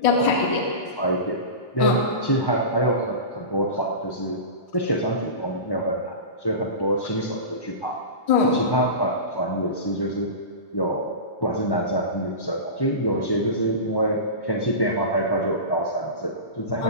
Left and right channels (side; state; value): right; late; 1.1 ms